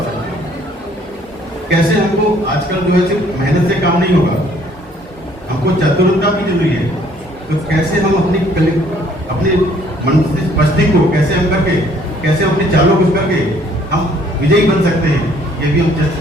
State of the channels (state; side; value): normal; both; correlation 0.61